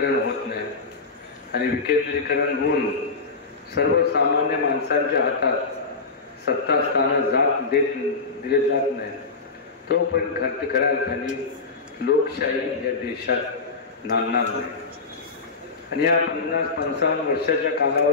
होत नाही आणि विकेंद्रीकरण होऊन सर्वसामान्य माणसांच्या हातात सत्ता स्थानं दिले जात नाही तोपर्यंत खऱ्या अर्थाने लोकशाही या देशात नांदणार नाही. आणि या 50-55 वर्षाच्या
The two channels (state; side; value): quieter; right; 4.2 dB